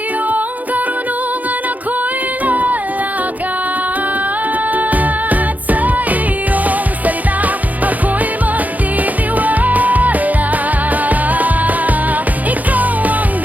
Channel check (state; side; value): late; left; 0.079 ms